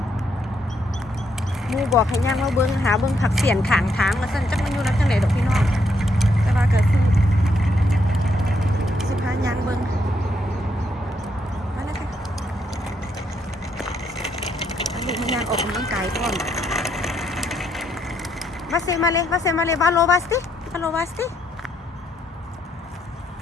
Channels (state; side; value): normal; both; correlation 0.75